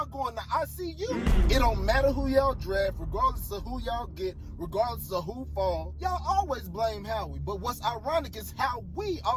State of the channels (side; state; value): both; identical; correlation 1.00